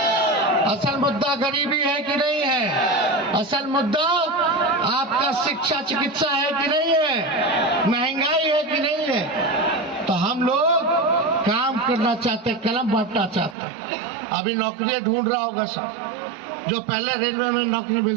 असल मुद्दा गरीबी है कि नहीं है? असल मुद्दा आपका शिक्षा चिकित्सा है कि नहीं है? महंगाई है कि नहीं है? तो हम लोग काम करना चाहते, कलम बांटना चाहते। अभी नौकरियां ढूंढ रहा होगा सब, जो पहले रेलवे में नौकरी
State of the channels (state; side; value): drops out; left; at 13.6 s